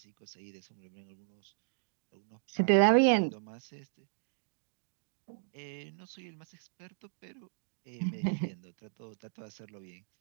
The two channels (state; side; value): silent; left; digital silence